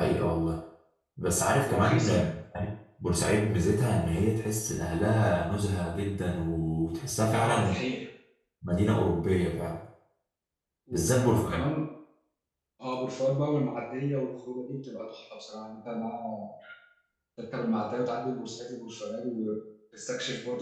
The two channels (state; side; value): identical; both; correlation 1.00